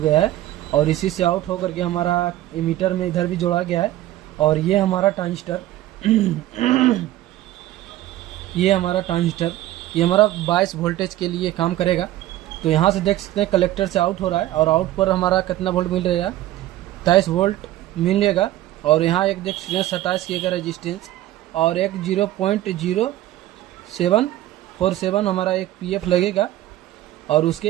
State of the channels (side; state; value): left; quieter; 14.7 dB